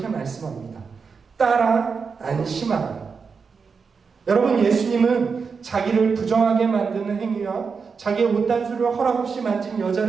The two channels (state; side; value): quieter; left; 5.4 dB